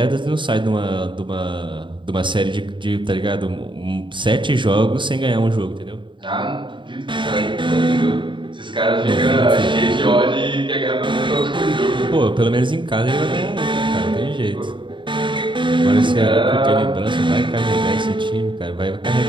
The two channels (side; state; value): left; late; 0.23 ms